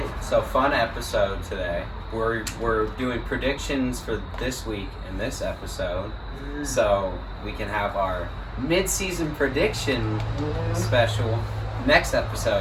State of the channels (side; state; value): both; identical; correlation 1.00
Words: So fun episode today. We're doing predictions for this week in this episode. So we can have our mid-season prediction special next